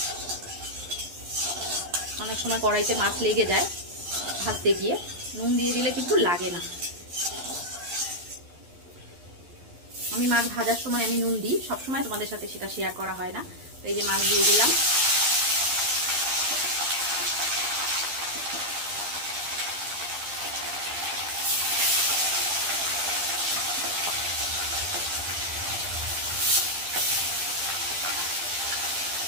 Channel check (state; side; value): late; left; 11 ms